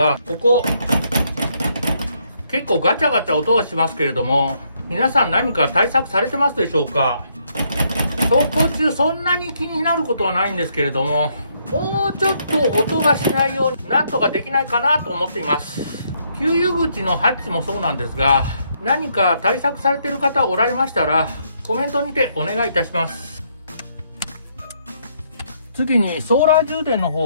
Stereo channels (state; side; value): inverted; both; correlation -0.72